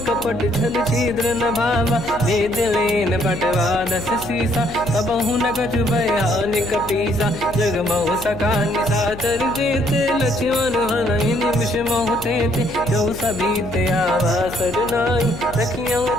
कपट छल छिद्र न भावा वेद लेन पटवा दस सीसा तबहु न कछु भयानि कपीसा जग बहु सका निसाचर जेते लक्ष्मण हनहि निमिष मोह तेते जो सभी ते आवा सरनाई रखियो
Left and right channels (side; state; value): left; noise; hum, 14 dB below the sound